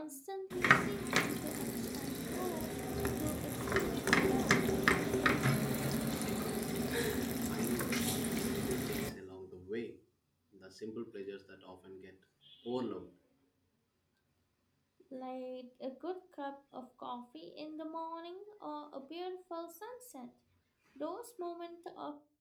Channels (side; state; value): both; identical; correlation 1.00